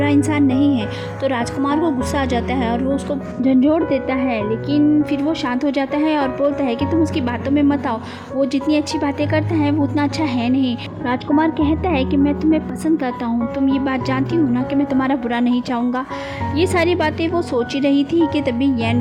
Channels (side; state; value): both; identical; correlation 1.00